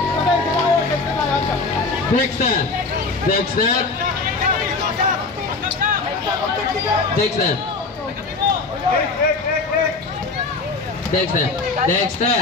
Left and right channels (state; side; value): quieter; right; 3.9 dB